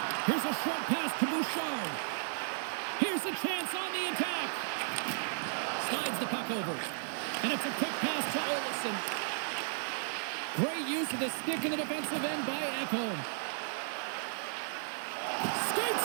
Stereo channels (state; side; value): silent; left; 55 dB below the other